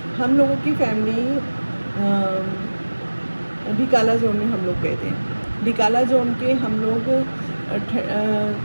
हम लोगों की फैमिली ढिकाला जोन में हम लोग गए थे। ढिकाला जोन के हम लोग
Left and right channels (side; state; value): both; inverted; correlation -1.00